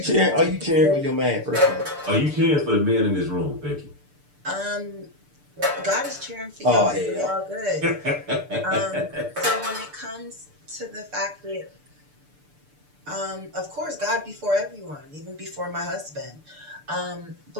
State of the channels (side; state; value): left; late; 6.8 ms